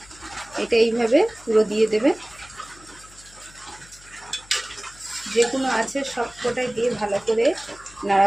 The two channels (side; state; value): left; noise; hum, 24 dB below the sound